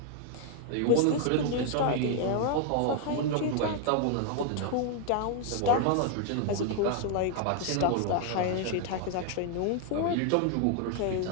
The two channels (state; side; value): different; both; correlation 0.00